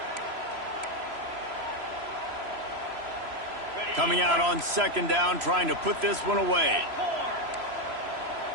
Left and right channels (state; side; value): late; left; 3.0 ms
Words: Coming out on second down, trying to put this one away.